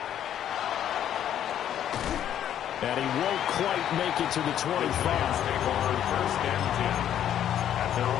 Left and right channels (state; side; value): quieter; right; 10.4 dB